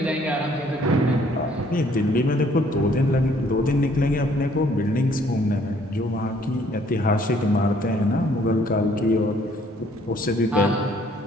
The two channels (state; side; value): normal; both; correlation 0.62